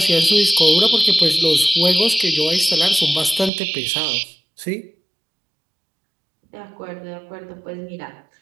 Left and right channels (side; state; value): left; drops out; at 3.5 s